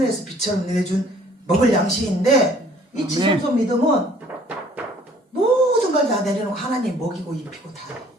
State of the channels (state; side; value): normal; both; correlation 0.57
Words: 빛처럼 내려준 먹을 양식인데 이 지성소 믿음은 모든 걸 다 내려놓고 하나님 먹이고 입히고 다